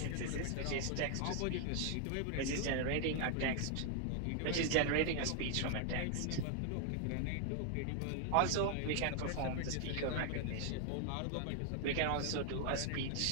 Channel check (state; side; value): different; both; correlation 0.00